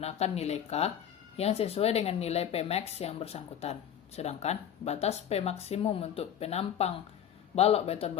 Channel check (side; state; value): right; quieter; 9.5 dB